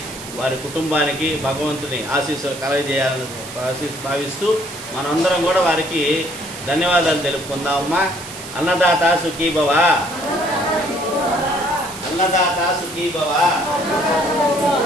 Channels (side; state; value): right; noise; hiss, 13 dB below the sound